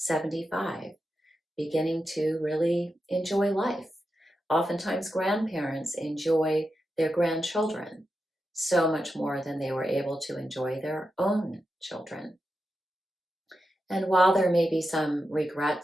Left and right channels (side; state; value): both; normal; correlation 0.89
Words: beginning to really enjoy life. Oftentimes grandparents enjoy their grandchildren so much more than they were able to enjoy their own children. And while there may be some